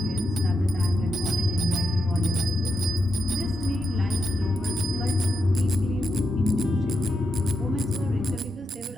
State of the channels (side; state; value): both; normal; correlation 0.84